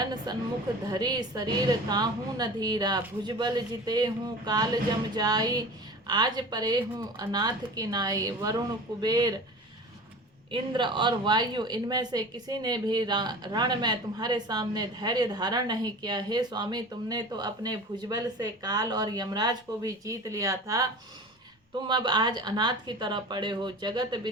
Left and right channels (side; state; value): both; normal; correlation 0.37